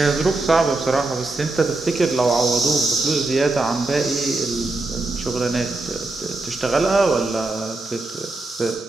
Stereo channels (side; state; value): left; quieter; 3.1 dB